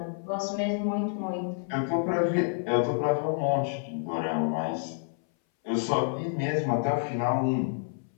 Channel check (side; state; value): right; silent; 59 dB below the other